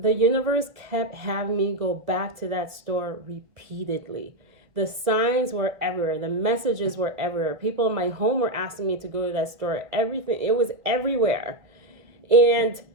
universe kept having me go back to that store repeatedly. The signs were everywhere. The messages were everywhere. People in my home were asking me to go to that store. Everything, it was everywhere. And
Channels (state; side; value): late; left; 2.2 ms